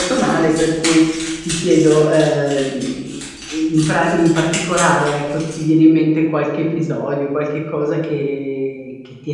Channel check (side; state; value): both; identical; correlation 1.00